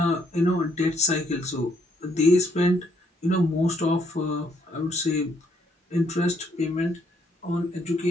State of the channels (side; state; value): both; normal; correlation 0.71